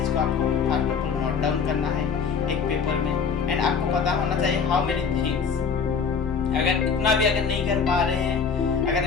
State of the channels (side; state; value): right; quieter; 6.0 dB